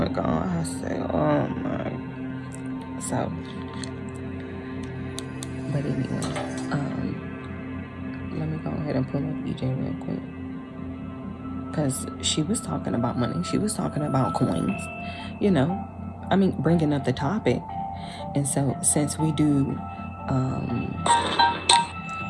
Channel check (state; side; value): identical; both; correlation 1.00